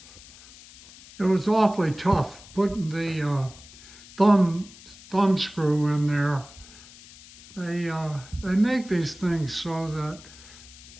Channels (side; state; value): left; noise; hiss, 20 dB below the sound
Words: It was awfully tough putting the thumb screw in there. They make these things so that